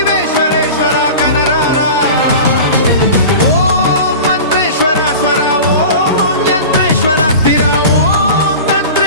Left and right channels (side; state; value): both; inverted; correlation -0.34